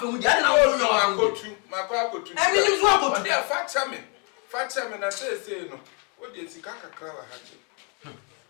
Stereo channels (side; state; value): right; quieter; 35.5 dB